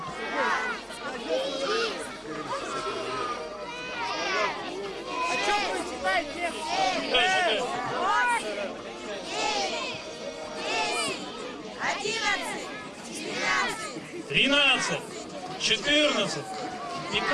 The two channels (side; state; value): both; identical; correlation 1.00